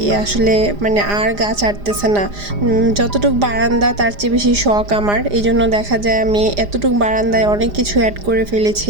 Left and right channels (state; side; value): late; left; 4.9 ms